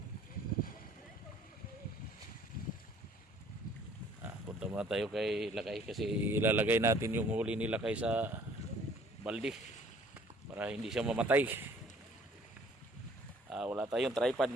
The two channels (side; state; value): both; normal; correlation 0.56